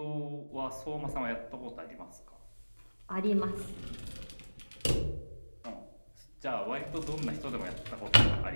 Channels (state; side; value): inverted; both; correlation -1.00